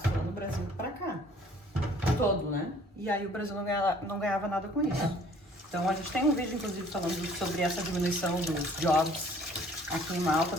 lá no Brasil para cá, todo, né? E aí o Brasil não ganhava nada com isso. Então a gente tem um vídeo, inclusive, falando sobre essa diminuição dos jobs aqui em Malta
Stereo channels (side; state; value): both; normal; correlation 0.56